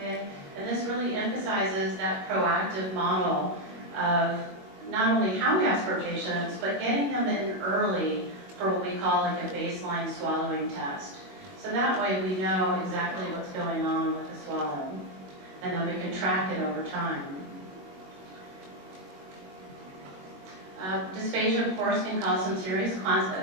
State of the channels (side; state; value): left; late; 21 ms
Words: And this really emphasizes that proactive model of not only how we ask for patients, but getting them in early for what we call like a baseline swallowing test. So that way we know exactly what's going on with the swallow, and then we can track it over time. Dysphagia, of course, can cause some serious